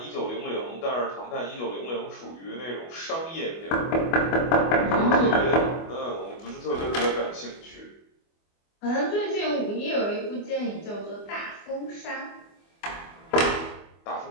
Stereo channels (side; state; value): right; late; 24 ms